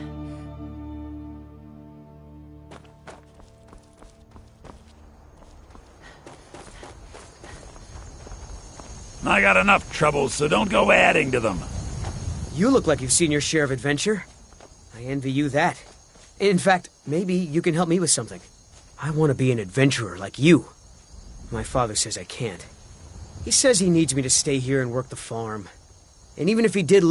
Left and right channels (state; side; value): identical; both; correlation 1.00